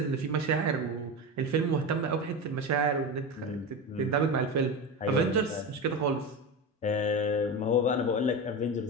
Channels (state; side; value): normal; both; correlation 0.21